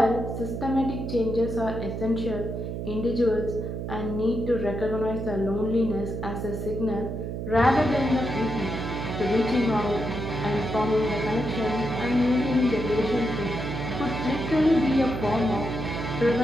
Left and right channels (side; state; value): right; noise; hum, 5 dB below the sound